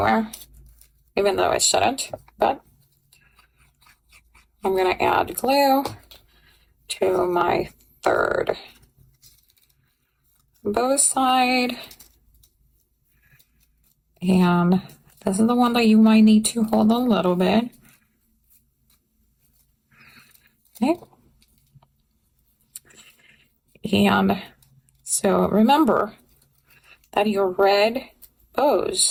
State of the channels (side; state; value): both; identical; correlation 1.00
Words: even though it shouldn't, but I'm gonna add glue to my third bow side, and this is the one that you might need to hold a little bit. Okay. And so remember that your red